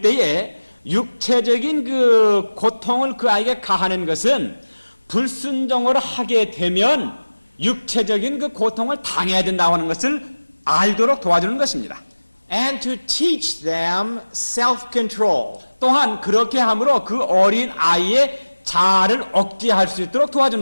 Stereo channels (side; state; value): both; inverted; correlation -1.00